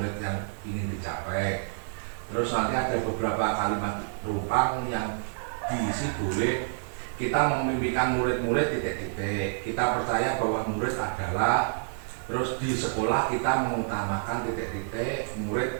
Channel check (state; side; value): silent; left; 59 dB below the other